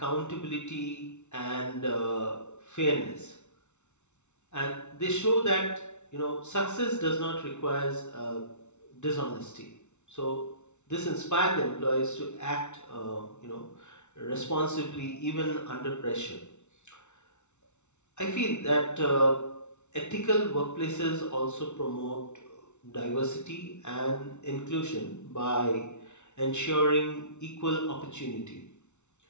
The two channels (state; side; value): late; right; 0.82 ms